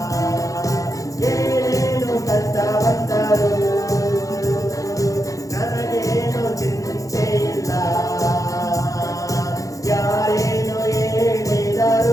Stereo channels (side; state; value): right; late; 0.16 ms